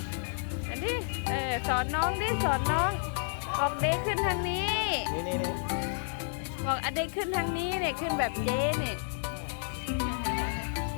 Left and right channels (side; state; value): right; silent; digital silence